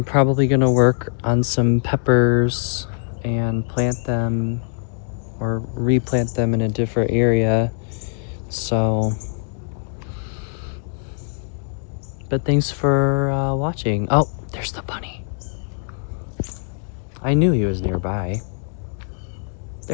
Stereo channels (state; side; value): silent; right; 64 dB below the other